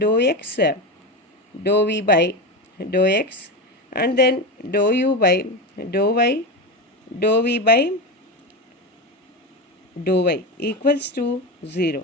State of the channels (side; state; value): both; normal; correlation 0.19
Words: x, dou v by dou x, and then dou u by dou y, dou v by dou y equals to